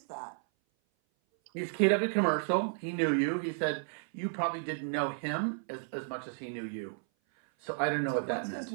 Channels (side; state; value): left; silent; 56 dB below the other